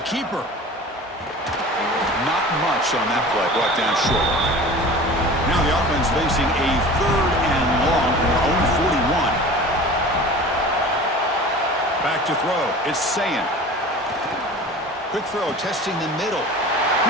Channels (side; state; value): both; normal; correlation 0.39